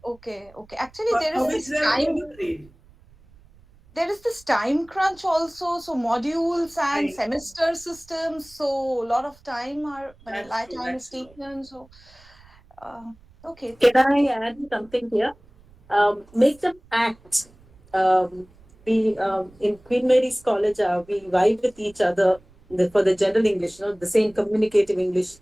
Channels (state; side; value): noise; right; rumble, 27 dB below the sound